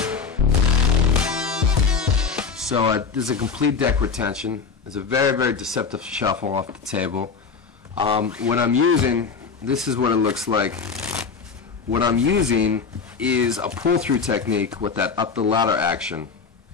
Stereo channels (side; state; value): right; quieter; 5.4 dB